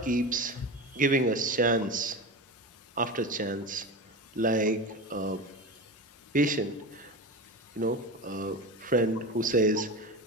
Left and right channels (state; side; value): normal; both; correlation 0.25